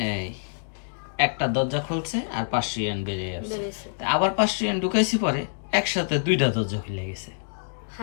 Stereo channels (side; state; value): right; silent; digital silence